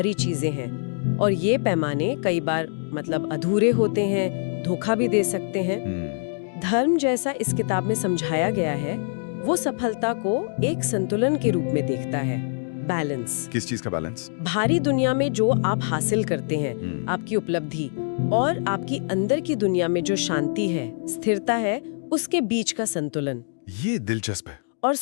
चीजें हैं। और ये पैमाने कई बार मतलब अधूरे होते हैं, धोखा भी दे सकते हैं। धर्म जैसा इस किताब में समझाया गया है, वो सफलता को एक संतुलन के रूप में देखता है। बैलेंस। किस चीज का बैलेंस? बाहरी दुनिया में जो आप हासिल करते हैं, आपकी उपलब्धि, और आपकी अंदर की दुनिया में जो शांति है, स्थिरता है, उसके बीच का संतुलन। ये दिलचस्प है। और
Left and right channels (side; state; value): right; silent; digital silence